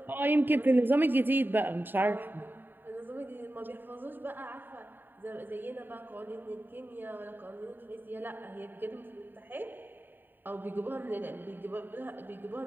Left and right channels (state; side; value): late; left; 0.093 ms